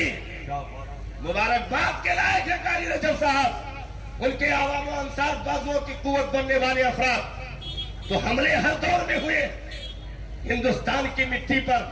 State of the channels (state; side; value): identical; both; correlation 1.00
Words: مبارکباد کے لائق ہے قاری رجب صاحب، ان کے عوام و انصار بازوؤں کی قوت بننے والے افراد۔ تو حملے ہر دور میں ہوئے، ہندوستان کی مٹی پر